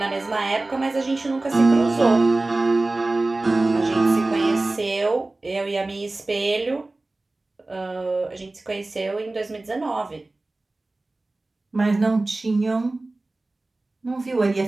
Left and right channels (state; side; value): quieter; left; 3.0 dB